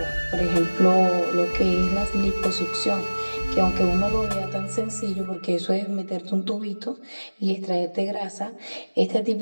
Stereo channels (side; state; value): both; inverted; correlation -1.00